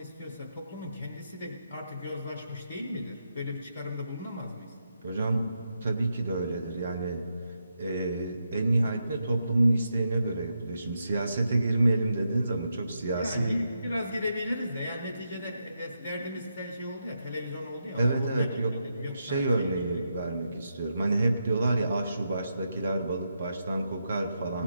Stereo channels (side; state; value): both; inverted; correlation -0.83